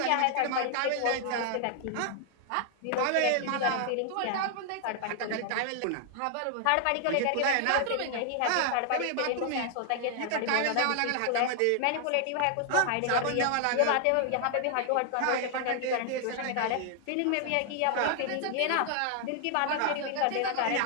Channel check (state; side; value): different; both; correlation 0.00